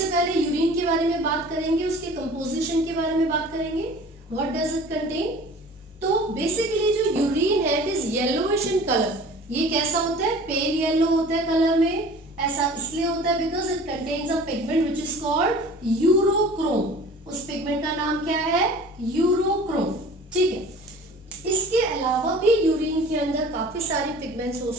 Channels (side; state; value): both; normal; correlation 0.44